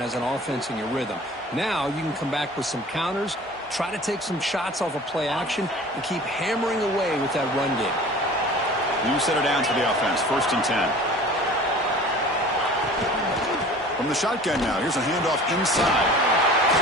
an offense in your rhythm. Now you can come back with some counters, try to take some shots off of play action, and keep hammering away with that run game. New center down to the offense. 1st and 10. From the shotgun now, here's a handoff inside.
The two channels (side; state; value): both; normal; correlation 0.43